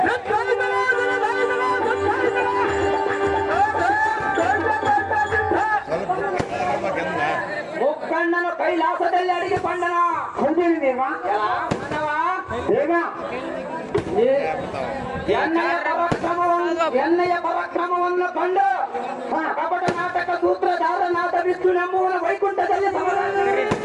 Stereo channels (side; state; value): both; identical; correlation 1.00